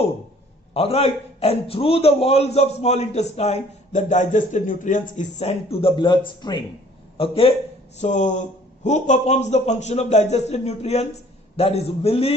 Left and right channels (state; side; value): normal; both; correlation 0.55